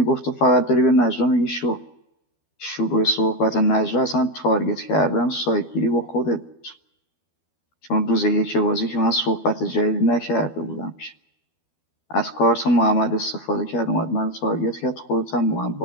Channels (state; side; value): late; right; 12 ms